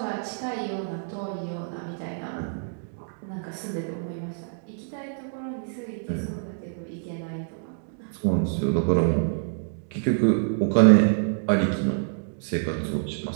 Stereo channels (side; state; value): left; silent; digital silence